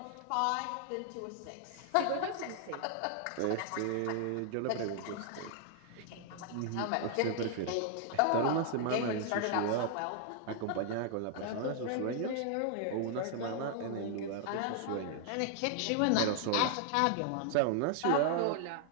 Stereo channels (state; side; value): different; both; correlation 0.00